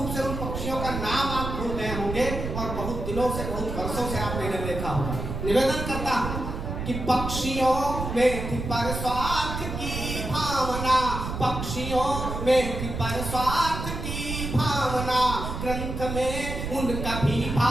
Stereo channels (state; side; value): noise; right; rumble, 5 dB below the sound